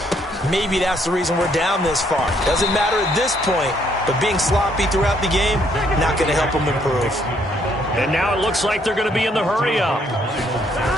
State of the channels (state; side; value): normal; both; correlation 0.69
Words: maybe that's the reason we're down this far. Doesn't matter at this point, but being sloppy throughout the game, not going to help them improve. And now it looks like they're going to be in the hurry-up.